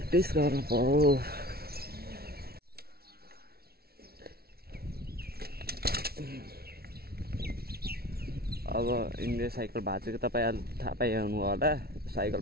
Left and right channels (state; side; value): late; left; 0.45 ms